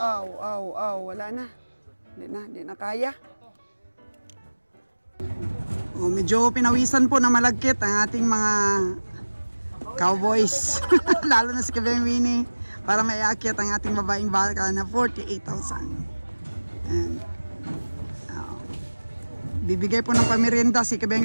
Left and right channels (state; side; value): inverted; both; correlation -1.00